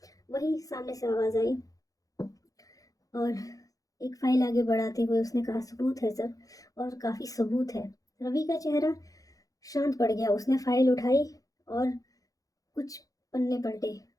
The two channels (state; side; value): late; right; 0.17 ms